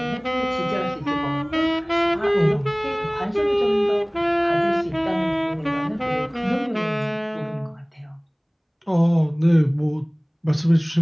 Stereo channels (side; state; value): both; identical; correlation 1.00